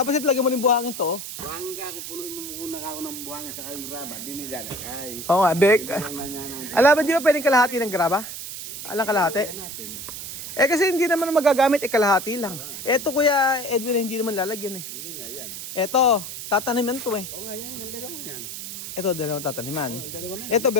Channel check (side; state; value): right; noise; hiss, 8 dB below the sound